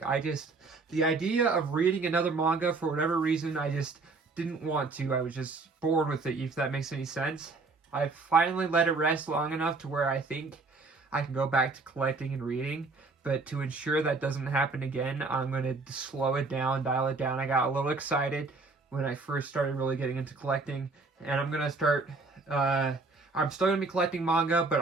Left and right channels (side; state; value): left; quieter; 3.8 dB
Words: idea of reading another manga, for whatever reason, I just didn't want to. I was just bored with it, if that makes any sense. I finally let it rest long enough to where I think I can go back to collecting and reading. But to ensure that doesn't happen again, I'm going to slow it down, dial it down. I got a little excited when I first started really getting into collecting. And I'm going to start... I'm still going to be collecting manga, but